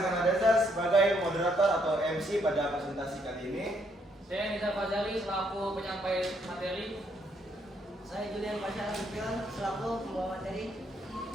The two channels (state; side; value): normal; both; correlation 0.72